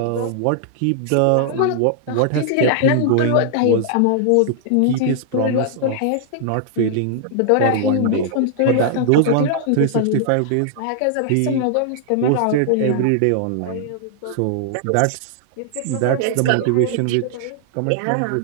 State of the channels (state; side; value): different; both; correlation -0.01